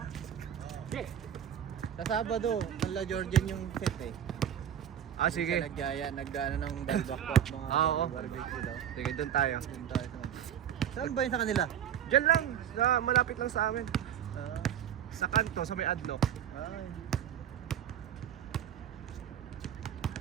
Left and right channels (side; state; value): left; quieter; 9.6 dB